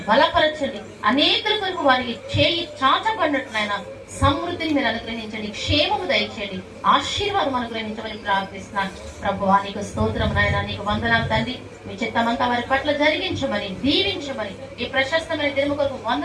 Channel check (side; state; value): both; identical; correlation 1.00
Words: బలపరచండి. అనేకుల కొరకు వారికి చేయి చాచబడినట్లయినా సమృద్ధిని మీరు అనుగ్రహించండి. క్షేమము దయచేయండి. ఆశీర్వాదం అనుగ్రహించమని ప్రార్థిస్తున్నాను ప్రభువా. నీకు స్తోత్రం నాయన. నీకు వందనాలు తండ్రి. మీ చిత్తమంతా వారి పట్ల జరిగించమని, దీవించమని ఈ ప్రశస్తమైన దినము కొరకు